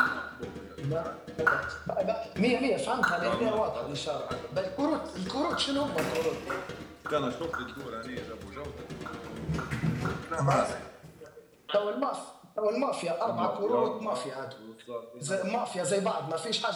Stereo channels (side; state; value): both; identical; correlation 1.00